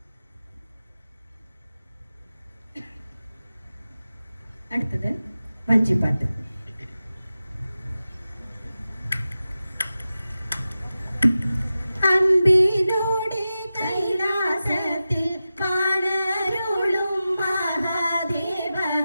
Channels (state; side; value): inverted; both; correlation -0.93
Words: അടുത്തത് വഞ്ചിപ്പാട്ട്. അൻപിനോടെ കൈലാസത്തിൽ പാടരുളും മഹാദേവ